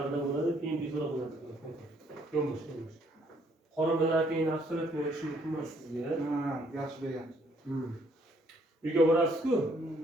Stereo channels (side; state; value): both; normal; correlation 0.66